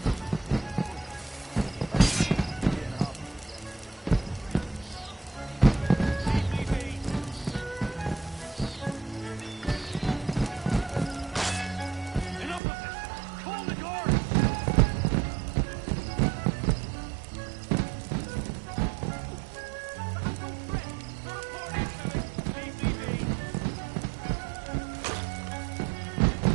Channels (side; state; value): left; drops out; at 12.6 s